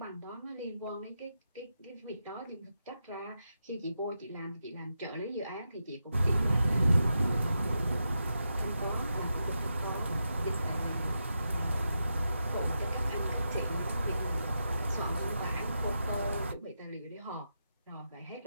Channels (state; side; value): inverted; both; correlation -0.87